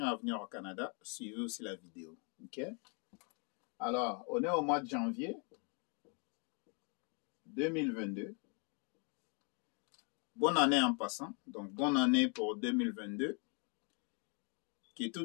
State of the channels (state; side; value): quieter; right; 36.5 dB